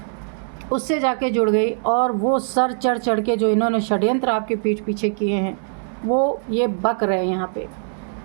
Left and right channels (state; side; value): silent; left; digital silence